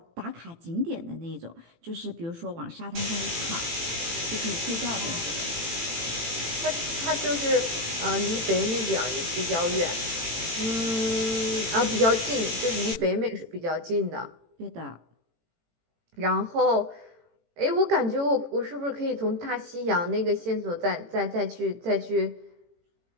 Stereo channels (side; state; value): left; late; 18 ms